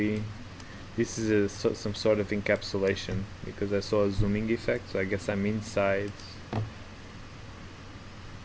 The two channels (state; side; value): identical; both; correlation 1.00